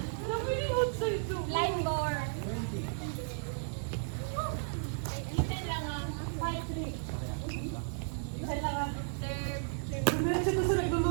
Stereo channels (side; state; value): left; silent; 55 dB below the other